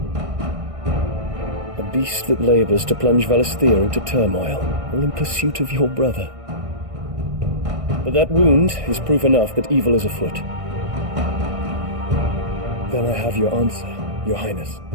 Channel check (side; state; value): left; late; 1.6 ms